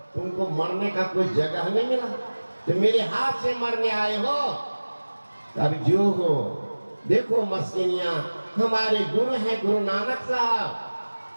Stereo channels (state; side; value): inverted; both; correlation -1.00